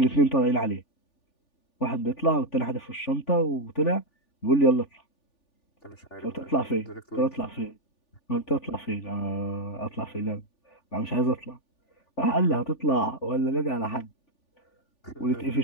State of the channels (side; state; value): right; late; 3.4 ms